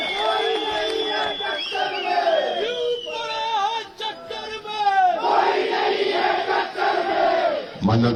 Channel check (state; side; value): identical; both; correlation 1.00